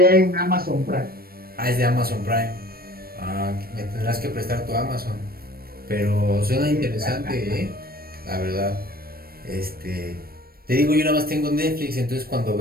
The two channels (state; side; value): late; left; 0.44 ms